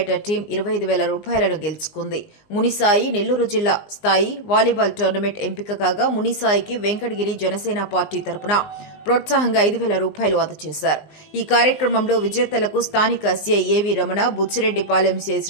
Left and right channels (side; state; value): right; late; 19 ms